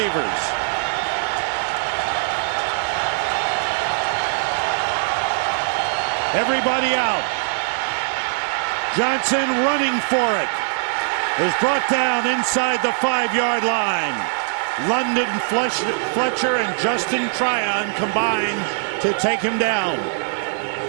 Everybody out. Johnson running for it. Is brought down inside the 5-yard line. London Fletcher and Justin Tryon combine to take him down.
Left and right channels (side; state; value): left; silent; 65 dB below the other